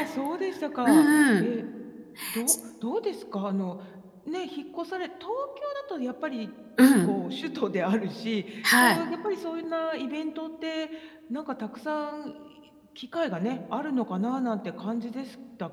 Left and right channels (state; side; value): identical; both; correlation 1.00